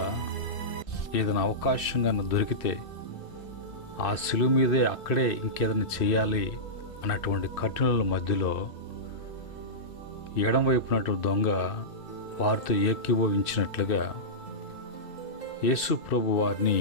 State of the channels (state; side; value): late; right; 2.6 ms